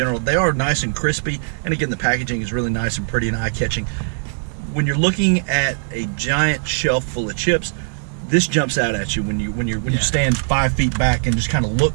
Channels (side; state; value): left; silent; digital silence